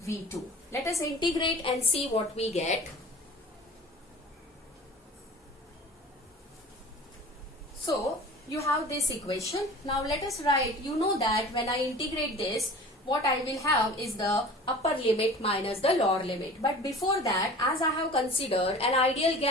V2. Let us integrate and see what we get. So you have this equation. Now let us write, you know that when I integrate this, what I will have is the upper limit minus the lower limit. But before that, as I have considered an ideal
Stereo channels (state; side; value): normal; both; correlation 0.41